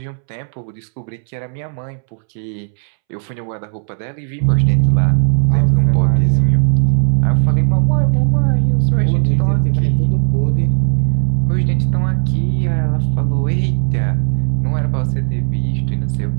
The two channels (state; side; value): silent; left; 69 dB below the other